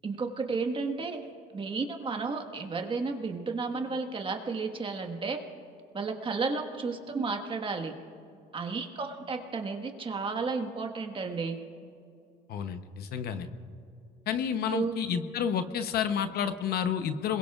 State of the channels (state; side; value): normal; both; correlation 0.45